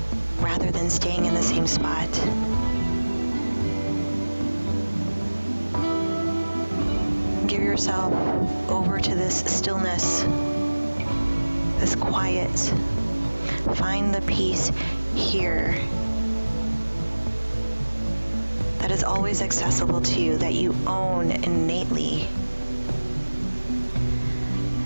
rather than staying in the same spot. Give yourself over to this stillness, this quiet. Find the peace here that is always accessible to you, that you own innately,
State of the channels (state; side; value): inverted; both; correlation -1.00